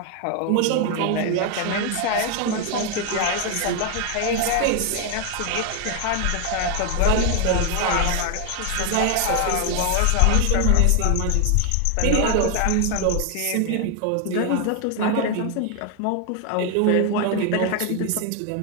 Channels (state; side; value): different; both; correlation 0.01